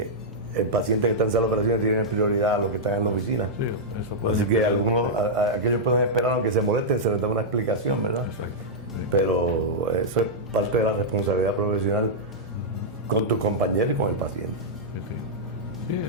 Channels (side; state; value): both; normal; correlation -0.08